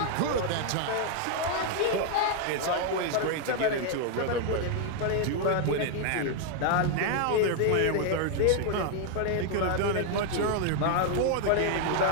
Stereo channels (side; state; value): both; different; correlation 0.00